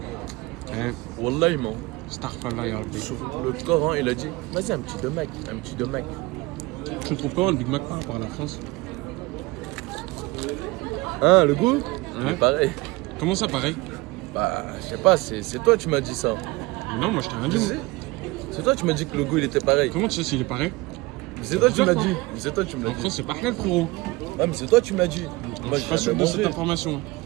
Hein? Wallah, man. Starfallah, ya Rabbi. Sur le Coran, il a dit vas-y, un petit de Mac, un petit de Mac. Tu le trouves pas, le Big Mac par rapport à la France? Hein, le goût? Ouais. Pareil. Comment ça, pareil? Bah, je sais pas, c'est toi, tu m'as dit ça. Non, moi, je t'ai rien dit. Tu moi. sais? C'est toi, tu m'as dit que le goût, il était pareil. Comment tu sais s'il est pareil? C'est toi, tu m'as bizarre, dit. C'est toi, tu me l'as En dit. France, c'est pas halal, frérot. Ah, mais c'est toi, tu m'as dit. Je suis pas sûr de cette information.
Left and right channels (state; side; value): quieter; left; 22.4 dB